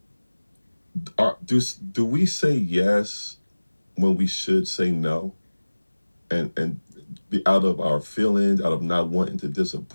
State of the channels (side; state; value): both; inverted; correlation -1.00